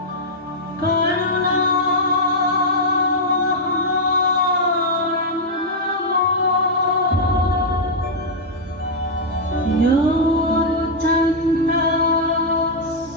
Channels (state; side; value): normal; both; correlation -0.05